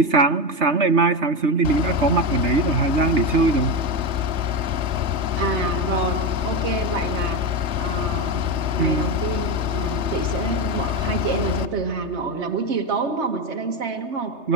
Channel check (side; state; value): left; late; 3.3 ms